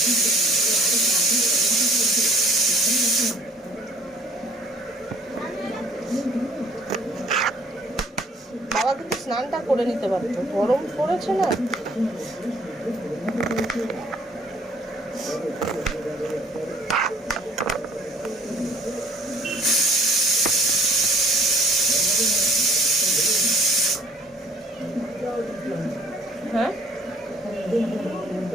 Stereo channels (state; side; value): normal; both; correlation 0.55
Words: বাবা কিন্তু স্নানটা করে নিতে পারতো, গরম পড়েছে না। হ্যাঁ